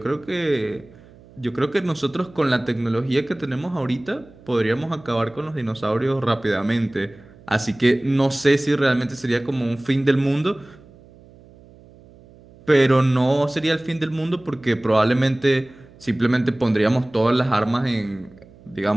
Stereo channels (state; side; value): noise; right; hum, 24 dB below the sound